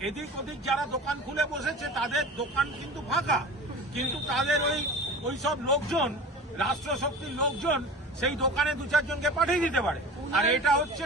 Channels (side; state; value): both; normal; correlation 0.36